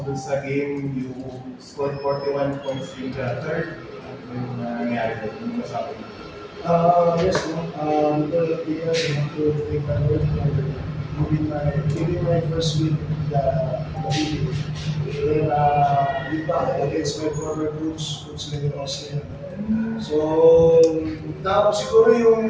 dun sa game? You scored 41 points in the third. Ano yung nangyari doon? Ano masabi mo? Yes, no. Because of the years, I want to thank the Lord for giving my first win in the video. Then, against my former coach, Coach Leo Austin. So, siguro yung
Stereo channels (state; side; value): identical; both; correlation 1.00